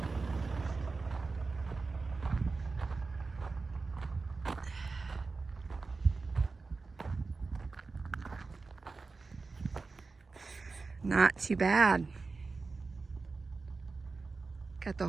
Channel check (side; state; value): left; quieter; 4.0 dB